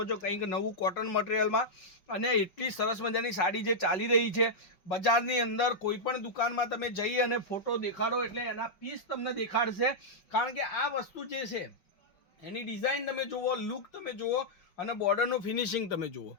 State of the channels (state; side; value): late; right; 5.3 ms